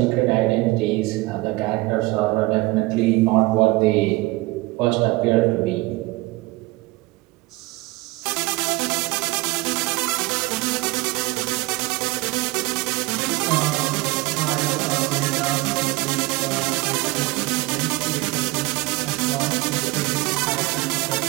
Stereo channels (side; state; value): left; quieter; 21.9 dB